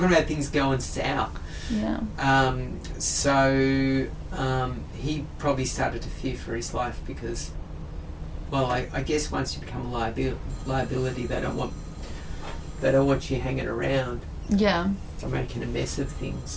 about things going south. Yeah. So he probably started to fear for his life because, well, I guess once you become a liability, they don't want you hanging around. Yeah. To making a mess of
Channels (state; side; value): identical; both; correlation 1.00